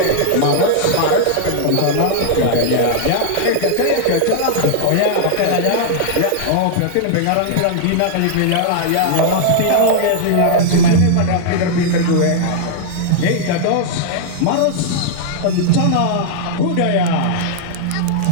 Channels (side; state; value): both; different; correlation -0.01